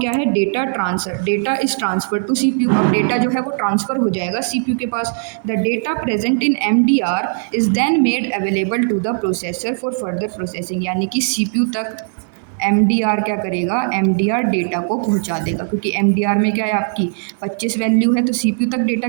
है, data transfer. Data is transfer to CPU। अब डेटा जो है वो ट्रांसफ़र हो जाएगा CPU के पास। The data present in MDR is then made available to the processor for further processing, यानी कि CPU तक MDR क्या करेगा, MDR डेटा को पहुंचा देगा, क्योंकि MDR में क्या है आपकी 25 वैल्यू है, तो CPU तक डेटा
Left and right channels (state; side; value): silent; left; digital silence